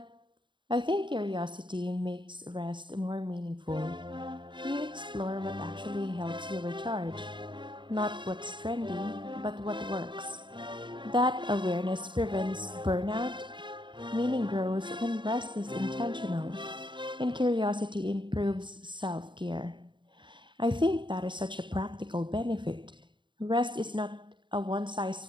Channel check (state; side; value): late; left; 0.23 ms